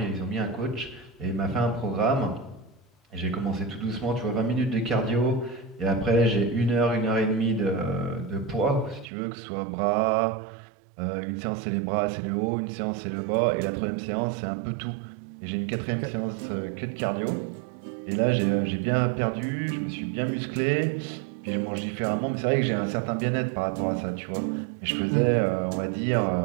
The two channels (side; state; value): left; drops out; at 9.1 s